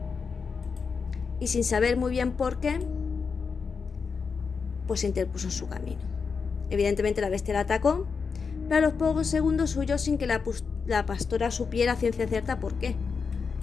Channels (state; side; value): quieter; right; 5.4 dB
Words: y sin saber muy bien por qué, pues se interpuso en su camino. Evidentemente la bestia la atacó, pero a los pocos segundos huyó sin que la pastora supiera a ciencia cierta por qué.